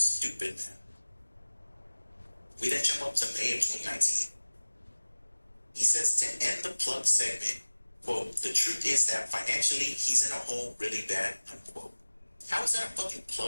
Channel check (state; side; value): inverted; both; correlation -1.00